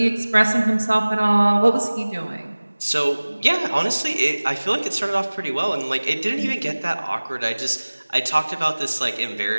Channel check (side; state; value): both; inverted; correlation -1.00